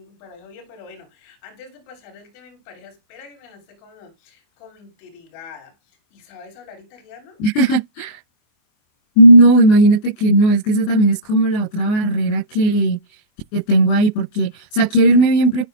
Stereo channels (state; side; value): late; right; 24 ms